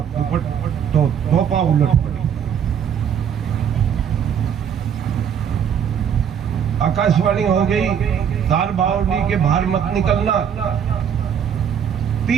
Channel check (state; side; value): quieter; left; 8.3 dB